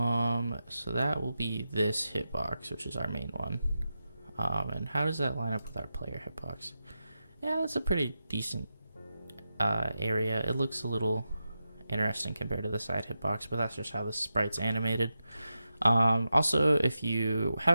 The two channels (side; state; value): both; inverted; correlation -0.89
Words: So that will be this hitbox, which is our main one. And how does that line up with our player hitbox? Yeah, that's a pretty decent area. It looks a little interesting compared to the side hitbox, but that's just how the sprite's animated. Also, if you